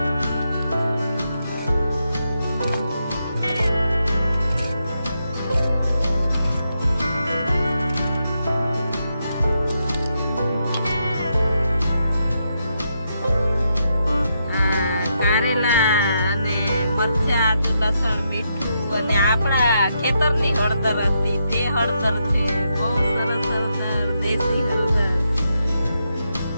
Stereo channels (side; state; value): both; inverted; correlation -0.81